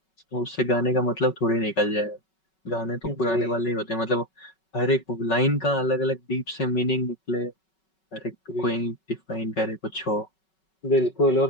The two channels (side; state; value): right; late; 5.3 ms